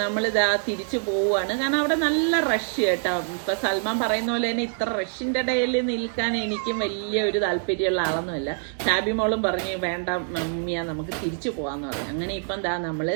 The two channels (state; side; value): silent; left; 62 dB below the other